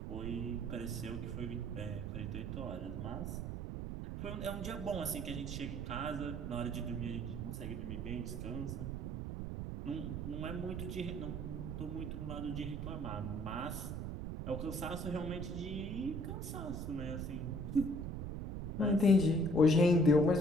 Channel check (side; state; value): right; noise; rumble, 4 dB below the sound